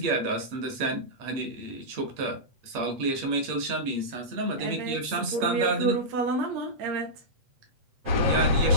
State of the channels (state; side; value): late; left; 8.4 ms